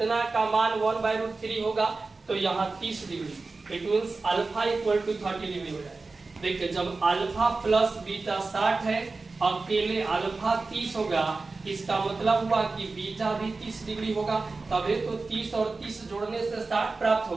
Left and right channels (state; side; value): quieter; left; 3.8 dB